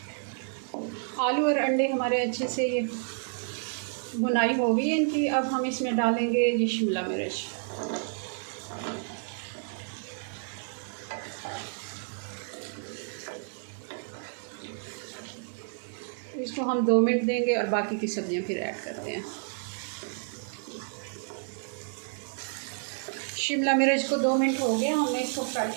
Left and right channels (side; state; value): left; silent; 58 dB below the other